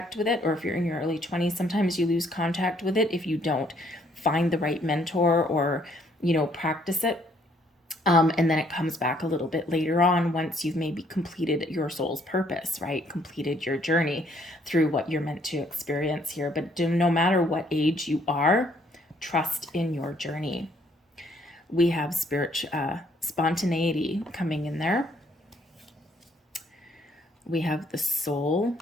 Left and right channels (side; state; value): both; normal; correlation 0.66